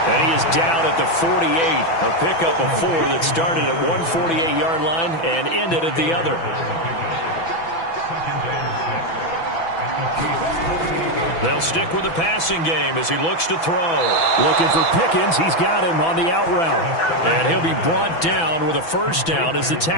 And he is down at the 48. A pickup of 4 that started at one 48-yard line and ended at the other. They'll stick with the passing game as he looks to throw. Looking for Pickens. He's got him on the out route. And he'll be brought down with a first down as the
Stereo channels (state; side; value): late; right; 6.0 ms